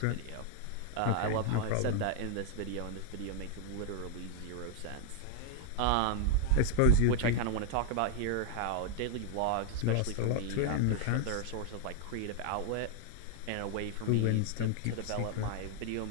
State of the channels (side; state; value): both; different; correlation 0.00